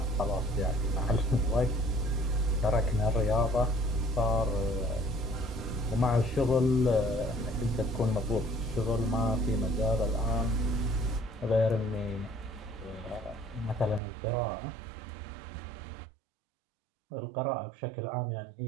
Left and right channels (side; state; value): left; drops out; at 14.0 s